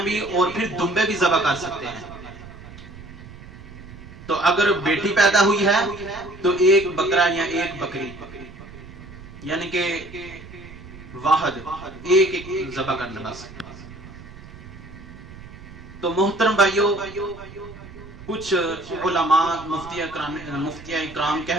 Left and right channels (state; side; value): noise; right; rumble, 16 dB below the sound